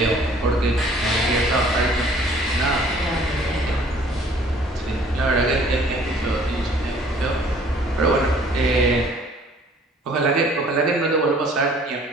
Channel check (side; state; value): both; normal; correlation 0.55